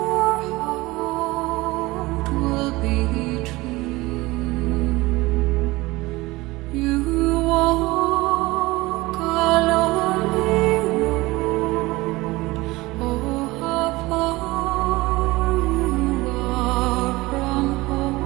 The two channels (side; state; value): left; quieter; 20.7 dB